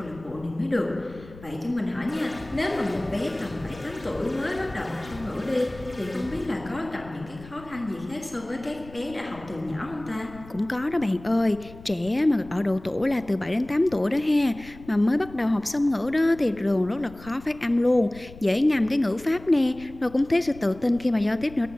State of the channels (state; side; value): noise; left; rumble, 18 dB below the sound